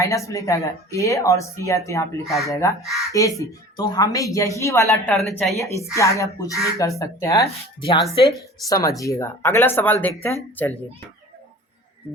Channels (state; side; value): normal; both; correlation 0.42